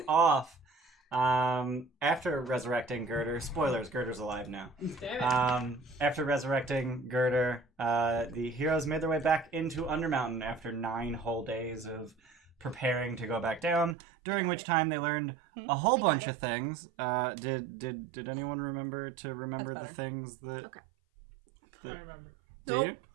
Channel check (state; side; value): drops out; left; at 14.0 s